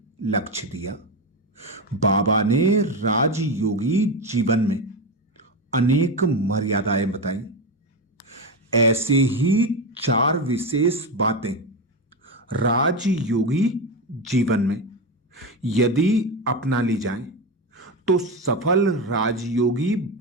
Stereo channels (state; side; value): normal; both; correlation 0.15